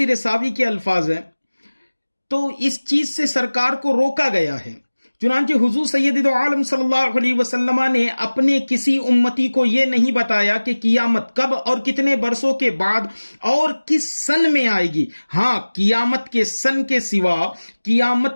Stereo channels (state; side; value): inverted; both; correlation -1.00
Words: ساوی کے الفاظ ہیں۔ تو اس چیز سے سرکار کو روکا گیا ہے۔ چنانچہ حضور سید دو عالم صلی اللہ علیہ وسلم نے اپنے کسی امتی کو یہ نہیں بتایا کہ قیامت کب اور کتنے برسوں کے بعد اور کس سن میں آئے گی۔ ہاں، قیامت کے سن کے سوا